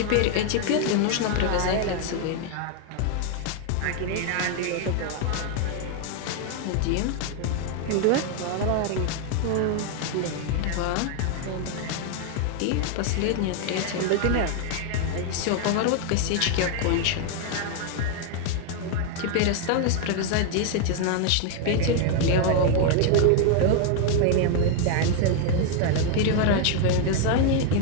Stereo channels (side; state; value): both; different; correlation 0.00